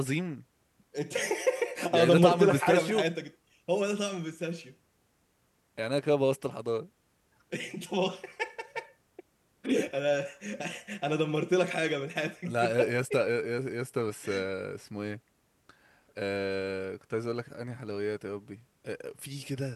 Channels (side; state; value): both; identical; correlation 1.00